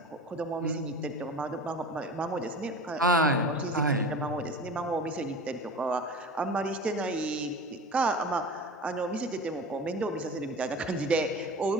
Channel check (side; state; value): both; normal; correlation 0.35